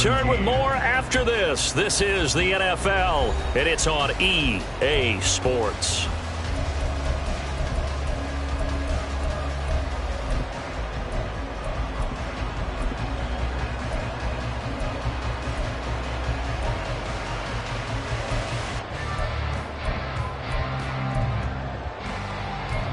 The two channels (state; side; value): identical; both; correlation 1.00